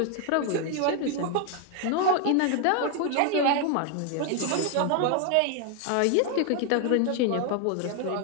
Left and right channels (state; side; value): different; both; correlation 0.00